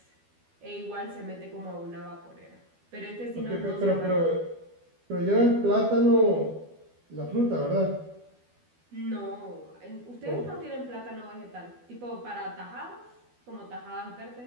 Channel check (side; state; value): left; late; 12 ms